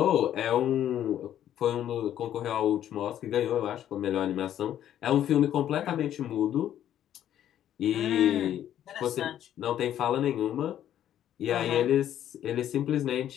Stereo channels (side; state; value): right; quieter; 11.1 dB